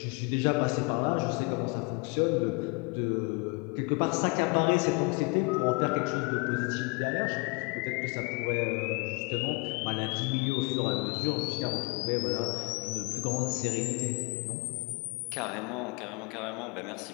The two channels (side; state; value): right; quieter; 30.1 dB